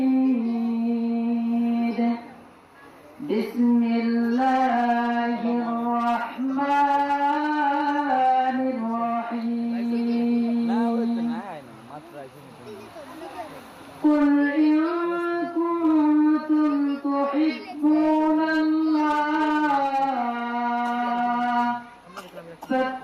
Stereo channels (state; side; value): identical; both; correlation 1.00